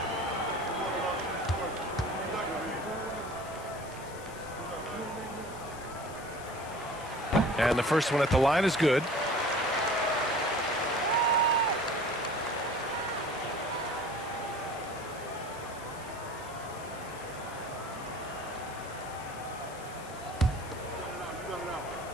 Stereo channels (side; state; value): left; noise; hiss, 18 dB below the sound